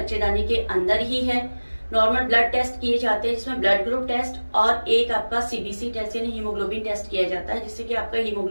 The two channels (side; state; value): both; inverted; correlation -1.00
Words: के अंदर ही है, नॉर्मल ब्लड टेस्ट किए जाते हैं जिसमें ब्लड ग्रुप टेस्ट और एक आपका सीबीसी टेस्ट यानी हीमोग्लोबिन टेस्ट किया जाता है, जिससे कि आपका